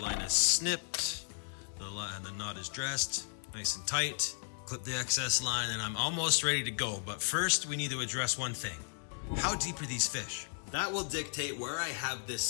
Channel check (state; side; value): silent; right; digital silence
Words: line is snipped, and the knot is dressed nice and tight. Clip the excess line, and I'm almost ready to go. But first, we need to address one thing. How deep are these fish? That will dictate where I have this